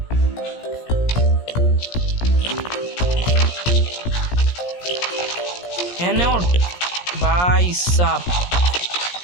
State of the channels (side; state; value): right; late; 17 ms